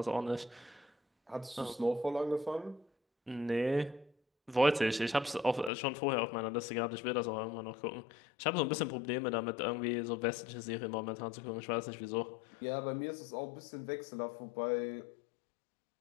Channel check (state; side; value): drops out; right; at 5.7 s